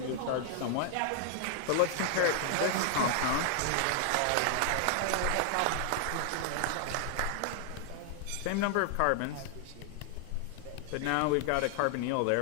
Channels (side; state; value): both; different; correlation 0.00